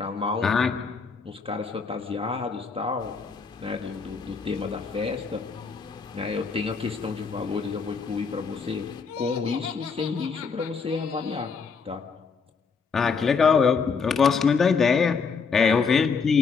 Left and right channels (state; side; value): quieter; right; 5.4 dB